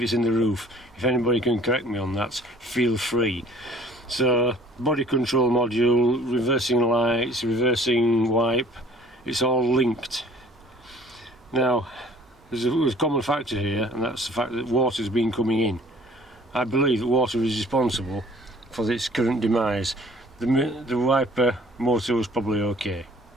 it's in the roof. If anybody can correct me on that, feel free. So, body control module, reversing lights, reversing wipe, it's all linked. Now, there's a common factor here, and that's the fact that water's been coming in. I believe that water is responsible for this current demise. The wiper motor was probably okay,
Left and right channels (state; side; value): normal; both; correlation 0.52